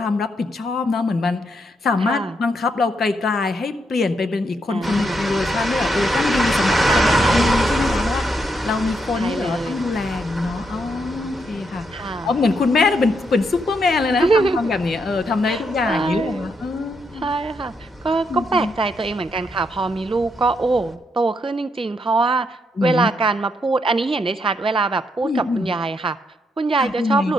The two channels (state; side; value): normal; both; correlation 0.78